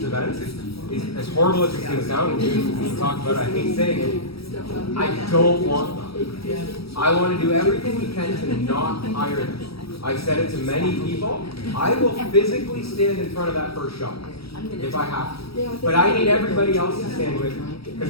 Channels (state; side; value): late; right; 0.76 ms